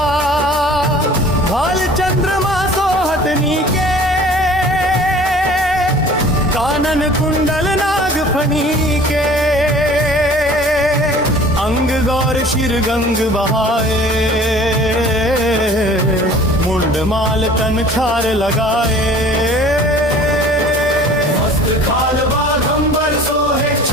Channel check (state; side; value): normal; both; correlation 0.47